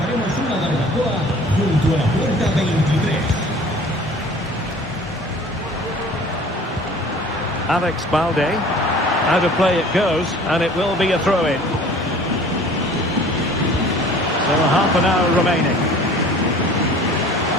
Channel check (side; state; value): both; normal; correlation 0.48